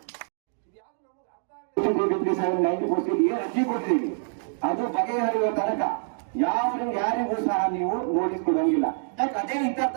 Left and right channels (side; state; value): left; silent; digital silence